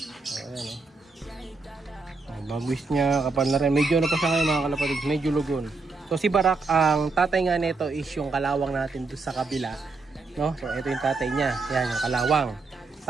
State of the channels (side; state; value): left; quieter; 3.9 dB